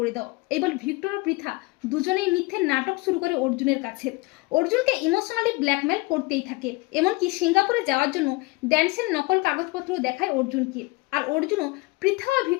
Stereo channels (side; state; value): right; quieter; 23.8 dB